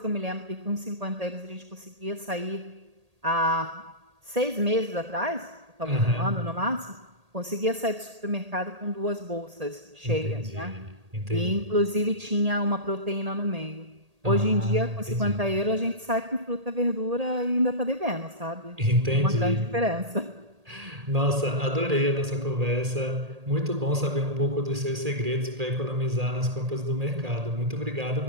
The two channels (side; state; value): left; late; 1.8 ms